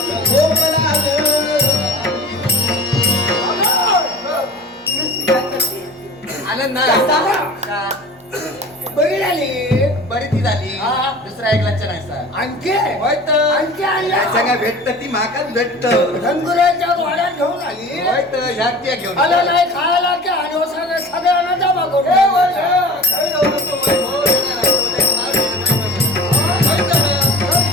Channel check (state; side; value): normal; both; correlation 0.39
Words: झोपला ग आनंद बघितली बरी ती झाली दुसरा एक लक्ष नाही सर आणखी होय तर आणखी आणल्या सगळ्या भेटत ती माकाच भेटत धनगुराच्या वाड्यात घेऊन आली होय तर ह्या त्या घेऊन आलं नाही खायला की आणि सगळ्यांना जमा करून